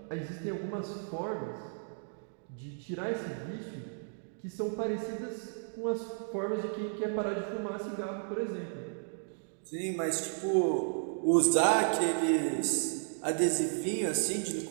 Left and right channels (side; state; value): left; silent; digital silence